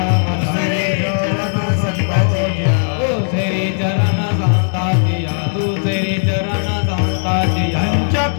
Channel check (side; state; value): right; silent; digital silence